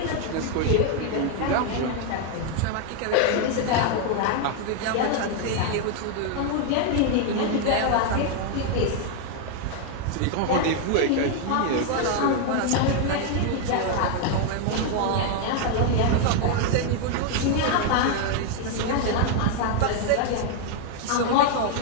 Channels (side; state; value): both; different; correlation 0.01